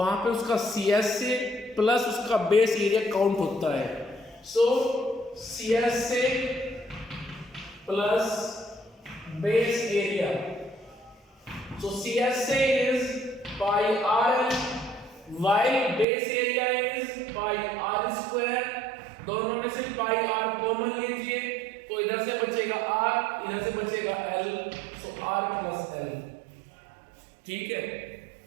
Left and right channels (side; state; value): left; drops out; at 16.1 s